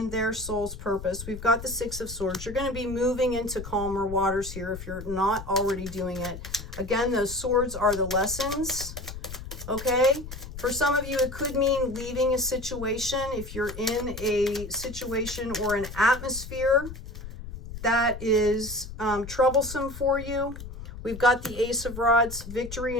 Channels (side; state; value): left; noise; rumble, 11 dB below the sound